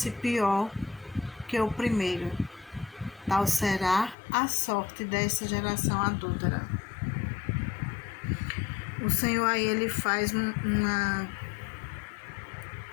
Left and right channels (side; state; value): right; drops out; at 4.2 s